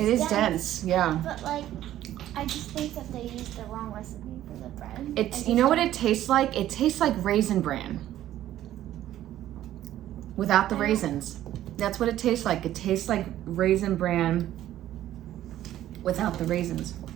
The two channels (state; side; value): quieter; left; 12.9 dB